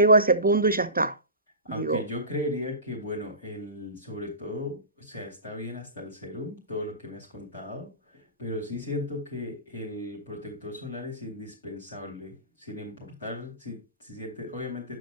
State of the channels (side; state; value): both; inverted; correlation -0.31